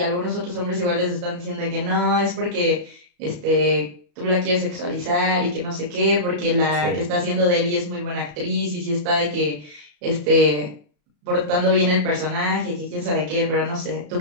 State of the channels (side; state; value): left; late; 34 ms